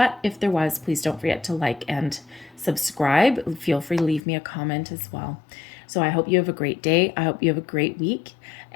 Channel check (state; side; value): drops out; right; at 4.2 s